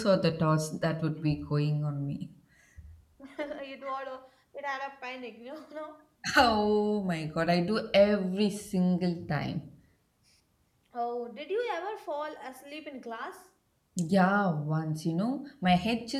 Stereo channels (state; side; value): identical; both; correlation 1.00